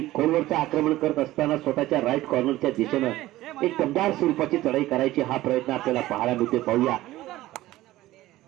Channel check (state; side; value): quieter; left; 16.4 dB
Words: खोलवरचं आक्रमण करत असताना स्वतःच्या राईट कॉर्नरच्या दिशेनं एक दमदार स्वरूपाची चढाई करायची हा प्रयत्न आपल्याला पाहायला मिळते. पाहूया